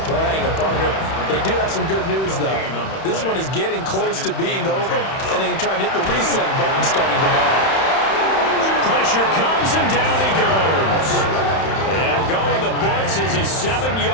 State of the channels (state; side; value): late; right; 31 ms